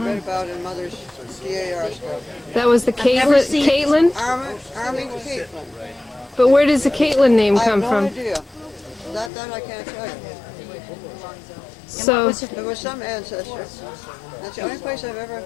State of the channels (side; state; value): right; drops out; at 9.3 s